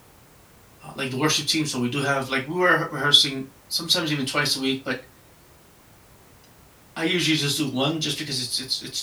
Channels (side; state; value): both; identical; correlation 1.00